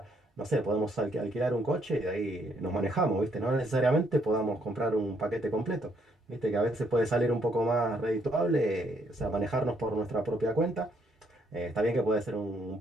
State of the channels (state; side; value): normal; both; correlation 0.71